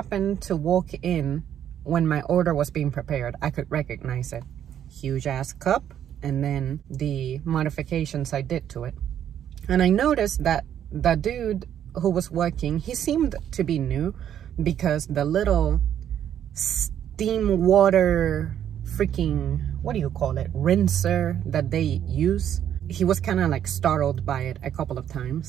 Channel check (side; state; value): left; quieter; 10.0 dB